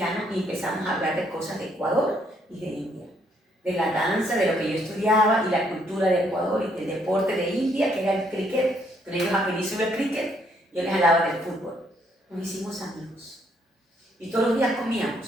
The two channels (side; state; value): both; normal; correlation 0.70